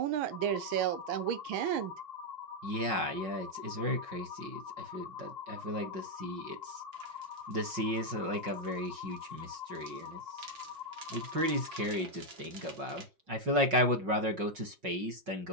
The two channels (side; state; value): left; late; 5.4 ms